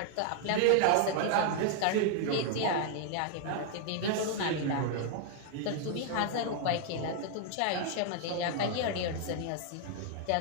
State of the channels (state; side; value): different; both; correlation 0.00